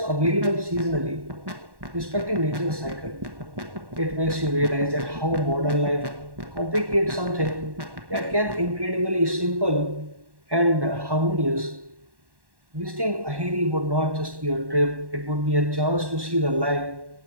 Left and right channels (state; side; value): late; left; 1.1 ms